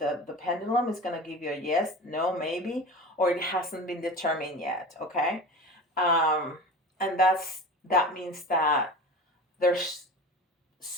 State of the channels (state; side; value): normal; both; correlation 0.33